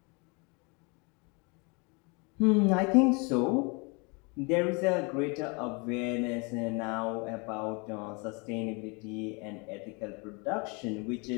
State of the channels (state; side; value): quieter; right; 31.2 dB